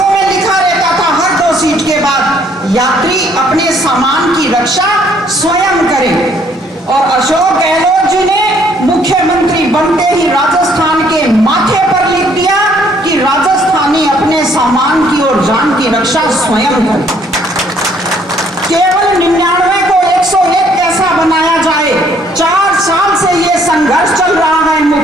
में लिखा रहता था हर 2 सीट के बाद यात्री अपने सामान की रक्षा स्वयं करें। और अशोक गहलोत जी ने मुख्यमंत्री बनते ही राजस्थान के माथे पर लिख दिया कि राजस्थानी अपने सामान की और जान की रक्षा स्वयं करें। केवल 99 को 101 कैसा बनाया जाए, 4 साल से ये संघर्ष चल रहा है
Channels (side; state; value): both; normal; correlation 0.64